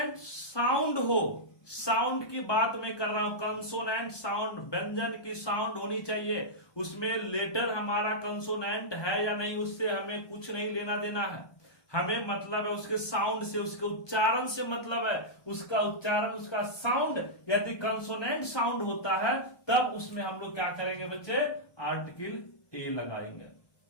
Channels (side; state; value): right; late; 1.2 ms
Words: साउंड हो, साउंड की बात मैं कर रहा हूं, कंसोनेंट साउंड, व्यंजन की साउंड होनी चाहिए, उसमें लेटर हमारा कंसोनेंट है या नहीं उससे हमें कुछ नहीं लेना देना है। हमें मतलब है उसके साउंड से, उसके उच्चारण से मतलब है। उसका उच्चारण, उसका साउंड यदि कंसोनेंट साउंड होता है तब उसमें हम लोग क्या करेंगे बच्चे, आर्टिकल ए लगाएंगे।